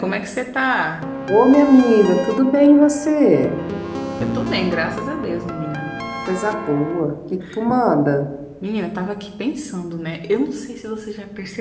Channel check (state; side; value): identical; both; correlation 1.00